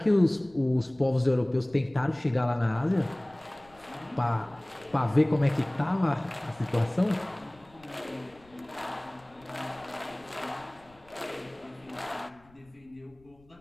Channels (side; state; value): left; noise; rumble, 28 dB below the sound